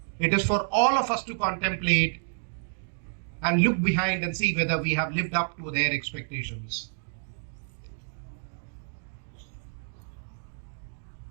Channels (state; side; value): silent; left; digital silence